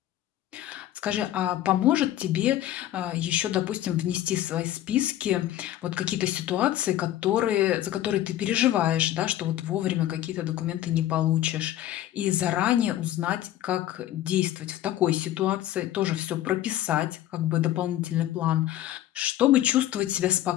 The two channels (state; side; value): quieter; right; 13.2 dB